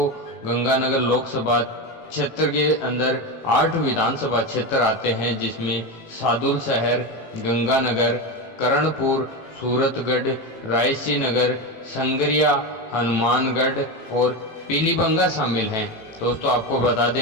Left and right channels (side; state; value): right; late; 18 ms